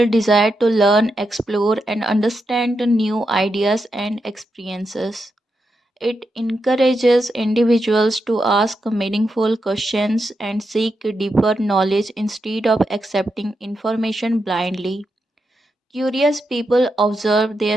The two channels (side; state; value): both; normal; correlation 0.85